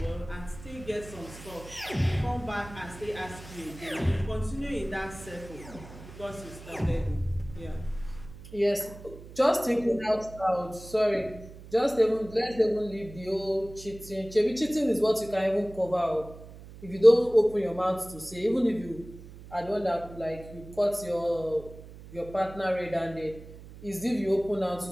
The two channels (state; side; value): noise; right; hum, 16 dB below the sound